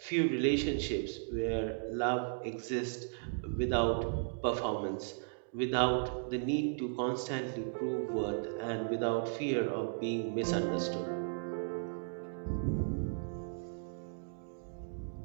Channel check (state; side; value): silent; left; digital silence